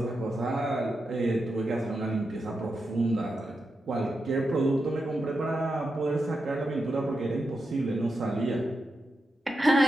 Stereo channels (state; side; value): normal; both; correlation 0.87